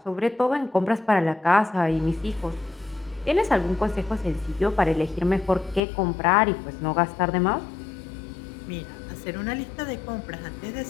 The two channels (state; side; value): drops out; right; at 5.8 s